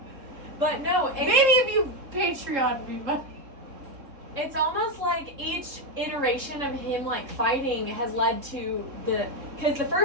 But no, Maybe if you Patreon me, but... It's almost like each iteration of him like fighting has led to because the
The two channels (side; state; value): left; late; 3.7 ms